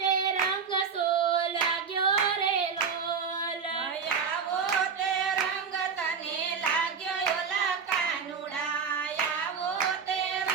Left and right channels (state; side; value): quieter; left; 6.1 dB